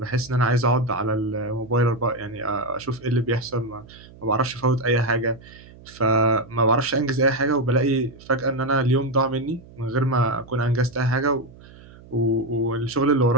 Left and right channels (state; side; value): noise; right; hum, 21 dB below the sound